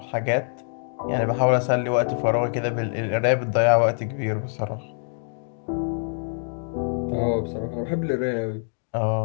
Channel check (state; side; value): silent; right; digital silence